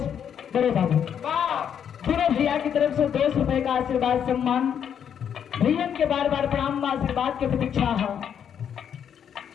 बड़े बाबू पूरे भैया की तरफ से 200 रुपए का आशीर्वाद सम्मान। भैया के बार बार प्रणाम, आशीर्वाद की प्रतीक्षा है।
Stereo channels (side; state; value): right; quieter; 8.5 dB